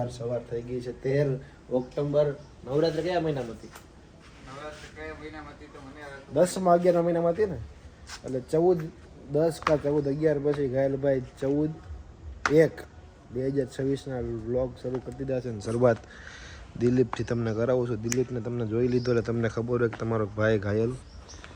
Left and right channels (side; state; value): both; identical; correlation 1.00